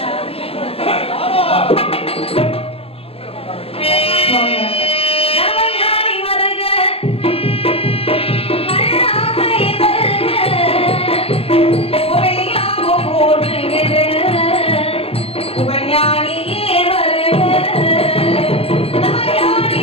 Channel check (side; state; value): right; late; 0.28 ms